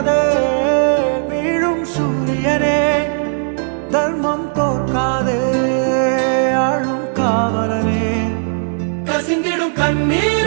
வீழும் சூரியனே தர்மம் தோற்காதே ஆளும் காவலனே கசிந்திடும்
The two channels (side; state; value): left; silent; 68 dB below the other